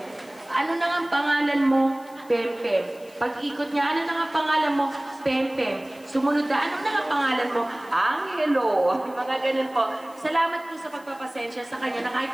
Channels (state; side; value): noise; left; hiss, 26 dB below the sound